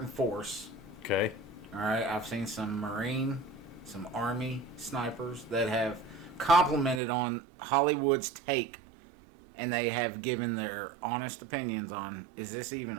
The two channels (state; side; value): drops out; left; at 7.0 s